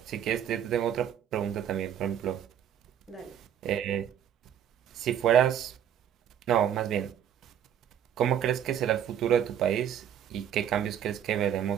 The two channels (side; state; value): left; quieter; 9.4 dB